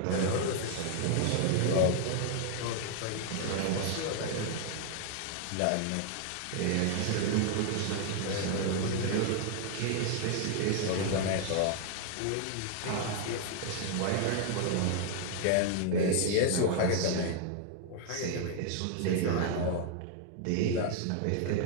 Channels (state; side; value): different; both; correlation 0.00